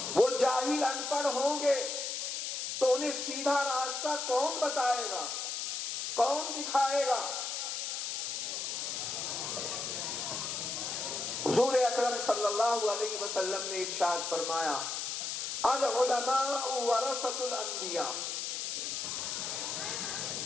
وہ جاہل ان پڑھ ہوں گے، تو انہیں سیدھا راستہ کون بتائے گا، کون دکھائے گا؟ حضور اکرم صلی اللہ علیہ وسلم نے ارشاد فرمایا العلماء ورثۃ الانبیاء.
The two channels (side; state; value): left; noise; hiss, 3 dB below the sound